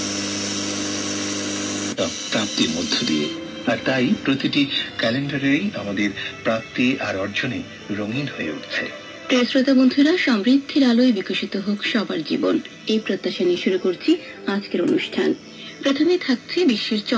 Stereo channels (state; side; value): identical; both; correlation 1.00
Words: প্রাপ্তির মধ্য দিয়ে। আর তাই প্রতিটি ক্যালেন্ডারেই আমাদের প্রাপ্তি আর অর্জনে রঙিন হয়ে উঠছে। প্রিয় শ্রোতা বন্ধুরা, সমৃদ্ধির আলোয় বিকশিত হোক সবার জীবন, এই প্রত্যাশা নিয়ে শুরু করছি আজকের অনুষ্ঠান। প্রথমে থাকছে বিশ্বের